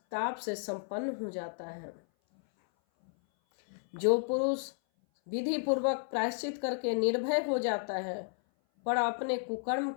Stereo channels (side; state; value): right; silent; 56 dB below the other